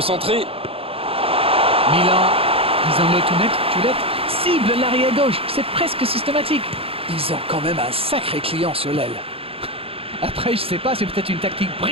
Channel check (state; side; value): late; left; 0.27 ms